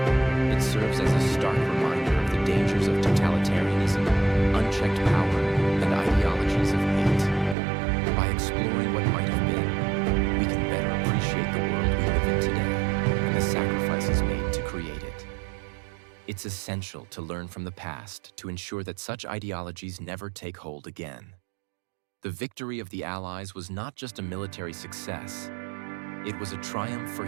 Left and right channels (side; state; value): left; drops out; at 7.6 s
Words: It serves as a stark reminder of the dangers of totalitarianism, unchecked power, and ideologies of hate. By exploring what might have been, we can better appreciate the world we live in today and the sacrifices made to create it. It's essential to learn from the past to ensure that such ideologies never take hold again. The victory of the Allies was not just a military success. It was a triumph for